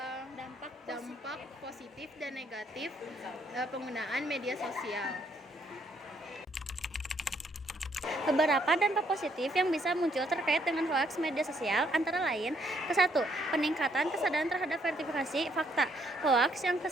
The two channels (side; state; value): both; normal; correlation 0.70